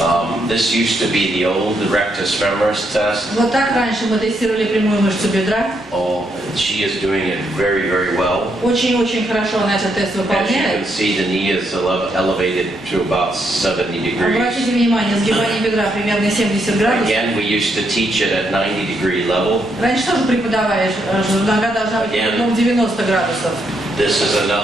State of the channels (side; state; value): both; normal; correlation 0.77